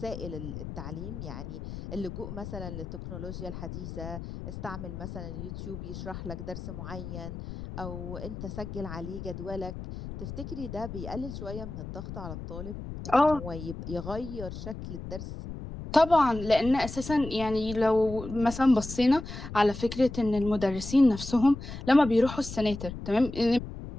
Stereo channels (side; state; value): left; noise; rumble, 9 dB below the sound